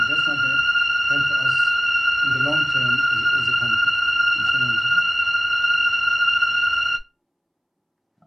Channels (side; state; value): both; identical; correlation 1.00